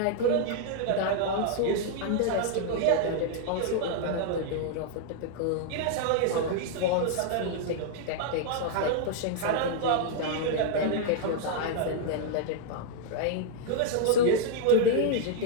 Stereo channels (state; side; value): different; both; correlation 0.00